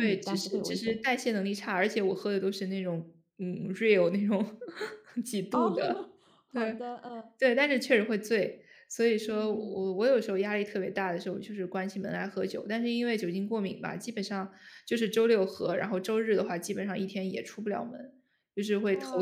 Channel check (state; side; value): identical; both; correlation 1.00